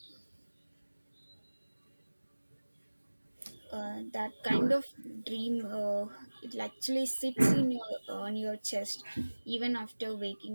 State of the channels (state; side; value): inverted; both; correlation -1.00